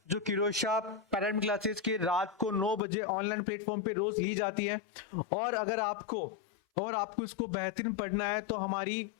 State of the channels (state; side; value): drops out; right; at 2.8 s